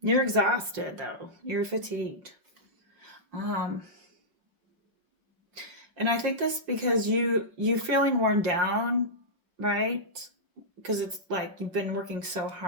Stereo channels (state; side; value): late; left; 5.6 ms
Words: you're exhausted though. You're fatigued. Um, and I think this because you feeling worn down, right? Because it's like you've been working so